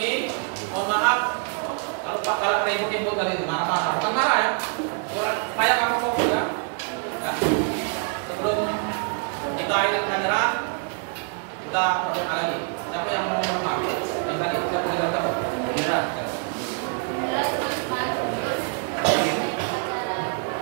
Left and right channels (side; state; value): left; quieter; 39.4 dB